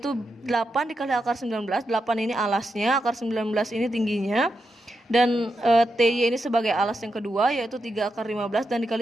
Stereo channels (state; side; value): normal; both; correlation 0.86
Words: 8 dikali akar 19. 8 ini alasnya, akar 19 ini tingginya. Dan TY ini sebagai alas yang kedua, yaitu 3 akar 15 dan